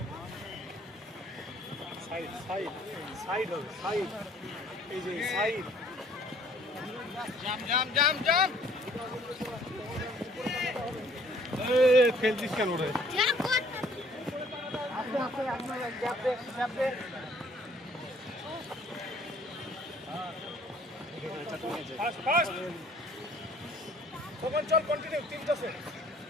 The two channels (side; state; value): both; normal; correlation 0.58